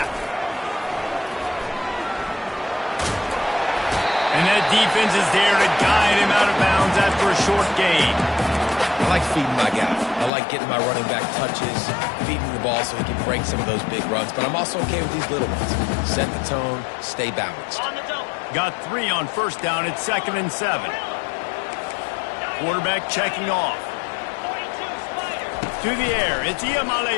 And that defense is there to guide him out of bounds after a short gain. I like feeding my guy. I like getting my running back touches, feeding the ball so he can break some of those big runs. But I'm also okay with these little ones. Set the tone, stay balanced. Got 3 on first down. It's 2nd and 7. Quarterback checking off. To the air. It's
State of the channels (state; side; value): drops out; right; at 10.3 s